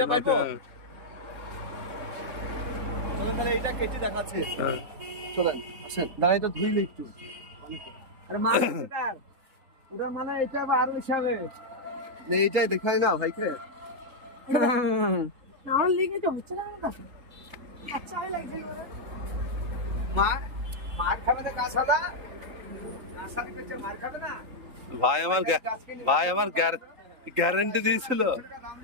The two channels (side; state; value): left; late; 3.8 ms